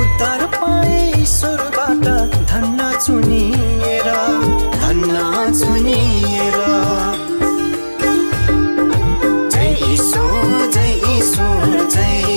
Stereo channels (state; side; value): inverted; both; correlation -1.00